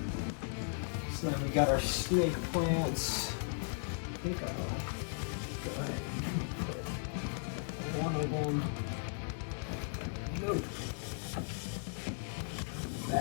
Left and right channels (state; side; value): silent; right; digital silence